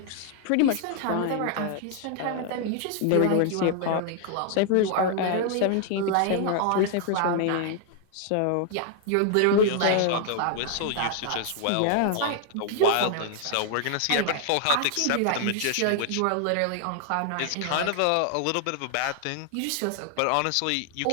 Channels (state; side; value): different; both; correlation 0.00